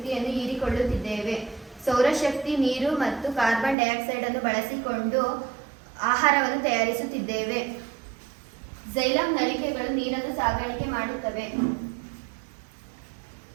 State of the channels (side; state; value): left; drops out; at 3.8 s